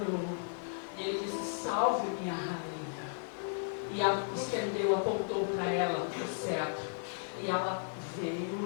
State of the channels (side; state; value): right; silent; digital silence